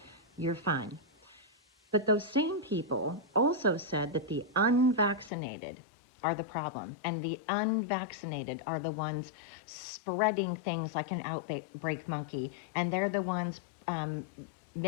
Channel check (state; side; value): drops out; right; at 5.3 s